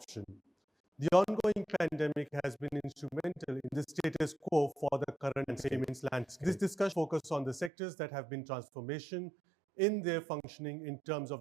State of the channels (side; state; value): left; drops out; at 7.7 s